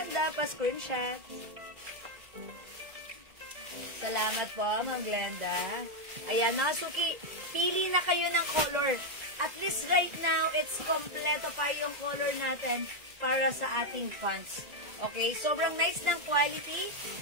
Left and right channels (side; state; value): left; late; 2.0 ms